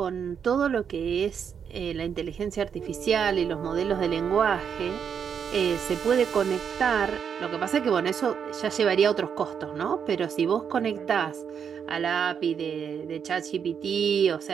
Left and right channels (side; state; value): left; quieter; 7.4 dB